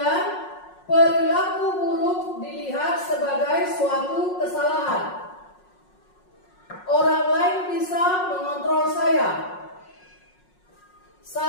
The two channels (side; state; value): right; late; 5.5 ms